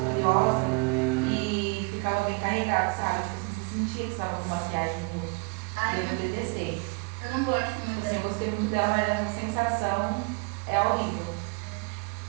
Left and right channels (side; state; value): left; quieter; 31.7 dB